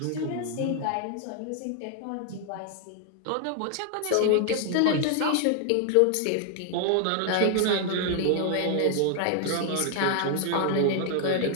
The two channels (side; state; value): both; different; correlation 0.00